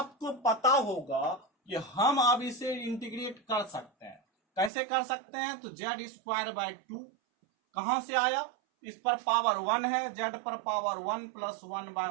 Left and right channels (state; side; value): drops out; left; at 4.7 s